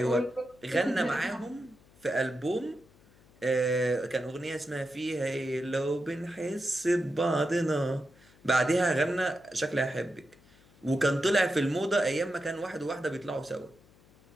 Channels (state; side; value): noise; left; hum, 28 dB below the sound